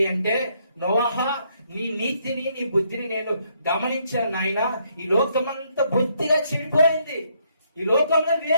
అంటే, నోవాహా, నీ నీతిని నీ బుద్ధిని నేను గమనించాను నాయన. ఈ లోకమంతా బుద్ధిగా చెడిపోయింది. ఈ లోకంలో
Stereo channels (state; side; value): inverted; both; correlation -0.72